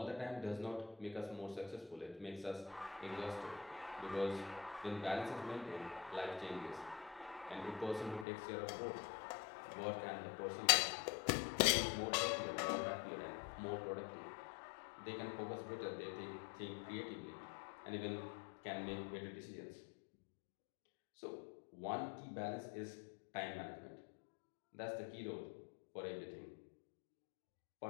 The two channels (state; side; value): drops out; right; at 8.2 s